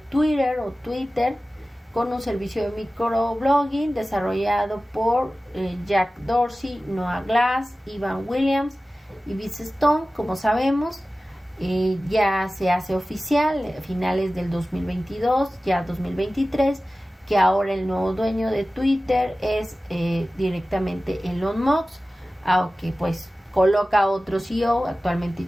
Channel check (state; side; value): normal; both; correlation 0.96